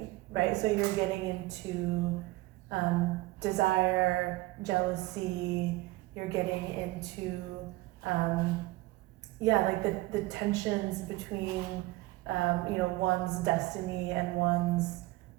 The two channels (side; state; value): left; quieter; 19.8 dB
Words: right? So you're getting into desire, jealousy, you're getting into, like the tensions between, one's destiny and one's